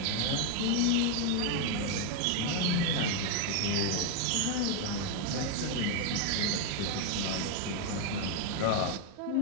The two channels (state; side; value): different; both; correlation 0.01